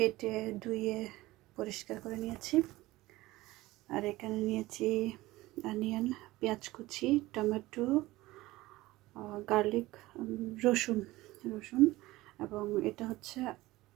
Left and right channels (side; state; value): left; quieter; 18.5 dB